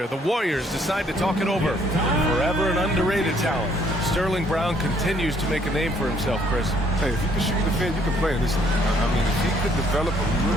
The Warriors decide to talk it over. Forever an underrated talent. Sterling Brown continues to make a name for himself, Chris. Hey, if you can shoot the defend, you can play in this. I mean, if he could develop a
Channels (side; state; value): both; normal; correlation 0.65